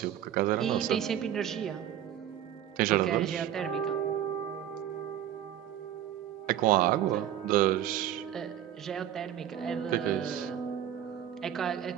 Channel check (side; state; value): left; quieter; 10.9 dB